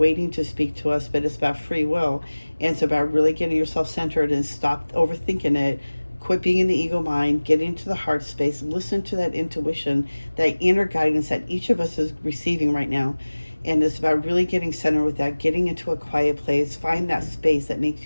to speak to us, but it's about free will. And it's about really getting yourself centered and stop overthinking it. Quit being in the ego mind, get into the heart space, listen to that intuition, that inner guidance that each of us is receiving right now. And it's about really getting centered with that, getting into a quiet place, find that space that makes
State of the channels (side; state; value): both; inverted; correlation -1.00